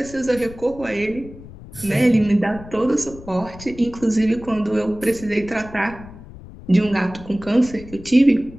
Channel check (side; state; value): left; noise; rumble, 17 dB below the sound